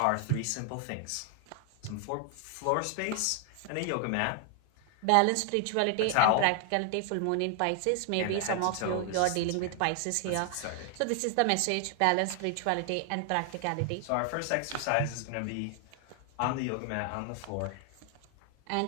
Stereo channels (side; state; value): both; different; correlation 0.00